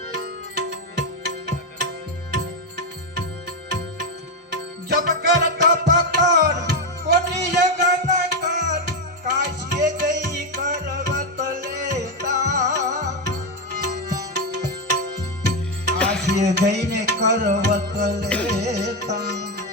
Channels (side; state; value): both; normal; correlation 0.07